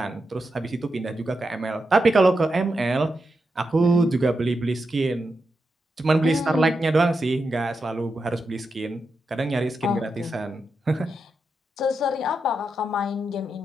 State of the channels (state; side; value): normal; both; correlation 0.87